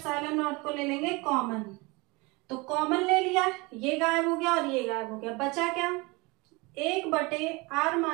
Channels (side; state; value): left; quieter; 25.8 dB